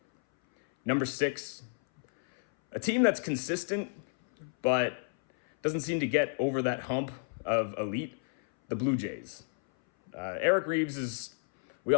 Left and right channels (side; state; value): right; silent; 57 dB below the other